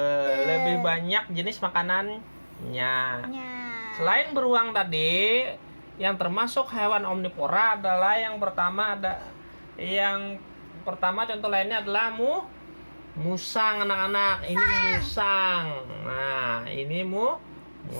lebih banyak jenis makanannya. Selain beruang tadi, yang termasuk hewan omnivora adalah yang pertama contoh lainnya adalah musang, anak-anak. Ini musang. Nah, ini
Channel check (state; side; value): inverted; both; correlation -1.00